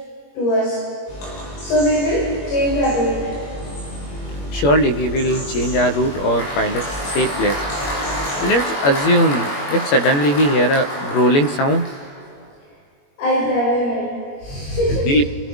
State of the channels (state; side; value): late; right; 21 ms